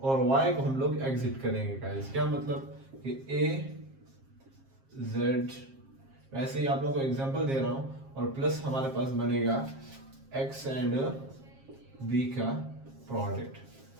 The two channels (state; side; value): late; left; 7.5 ms